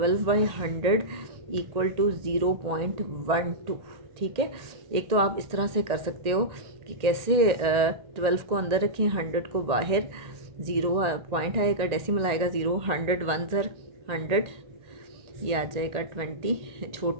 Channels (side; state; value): left; late; 1.8 ms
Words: = 0.12, ठीक है। एक तो आप इस तरह से कर सकते हो कि कैसे 12 को अंदर रखें, 100 को बाहर, ज़ीरो पॉइंट आएगा, डेसिमल आएगा 0, 100 वन ज़र 100, ये आ जाएगा 20,